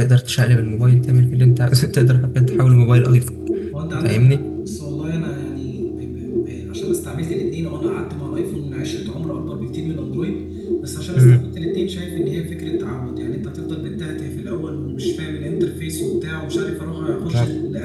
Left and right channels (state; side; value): identical; both; correlation 1.00